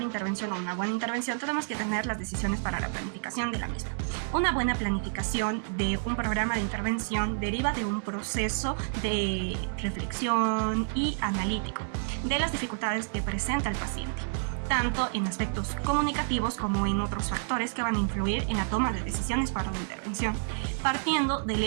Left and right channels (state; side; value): silent; left; digital silence